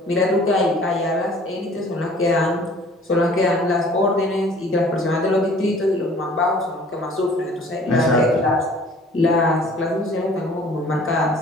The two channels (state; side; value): normal; both; correlation 0.52